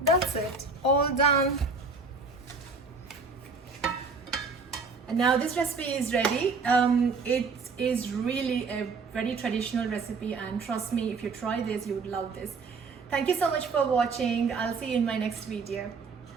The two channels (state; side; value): quieter; left; 4.3 dB